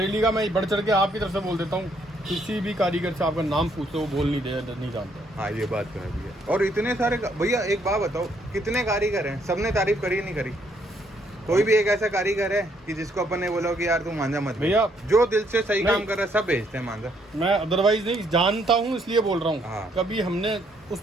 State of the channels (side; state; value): both; normal; correlation 0.70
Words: का मैं बढ़ चढ़ के आपकी तरफ से बोल देता हूँ, किसी भी कारीगर से आपका नाम पूछो वो बोल नहीं जानते। हाँ ये बात तो है भैया। और इतने सारे भैया एक बात बताओ, कितने कारीगर हैं, सबने तारीफ करी नहीं करी? कोई भी एक ऐसा कारीगर है कि जिसको अपन ने बोला कि यार तू मांझा मत भैया, जो दिल से सही काम कर रहा है सब भेजते हैं मांझा। मैं अदरवाइज नहीं जानता हूँ इसलिए बोल रहा हूँ। हाँ। कभी हमने उस